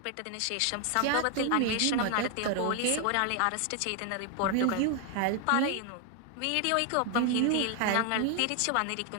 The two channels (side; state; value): both; different; correlation 0.00